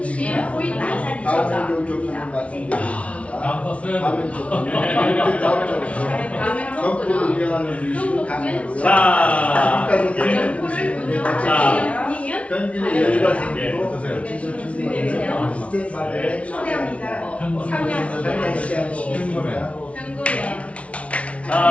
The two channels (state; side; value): late; right; 0.063 ms